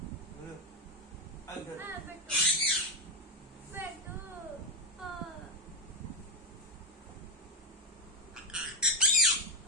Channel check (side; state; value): both; normal; correlation 0.07